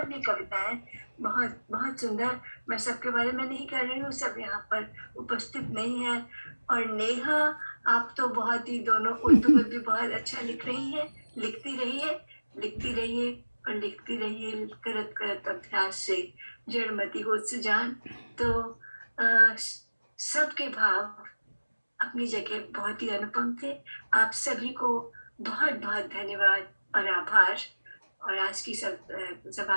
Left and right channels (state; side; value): inverted; both; correlation -1.00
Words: भी कविताएं बहुत बहुत सुंदर, मैं सबके बारे में नहीं कह रही हूँ, सब यहाँ पर उपस्थित नहीं है। और नेहा, आप तो बहुत ही, दोनों उर्दू में भी बहुत अच्छा लिख रही है, लिखती रहिए और लिखती रहिए, करत करत अभ्यास से जड़मती हो सुजान। तो सबके भाव अपनी जगह बहुत ही अनुपम थे। आप सभी को बहुत बहुत धन्यवाद और आभार, और आज की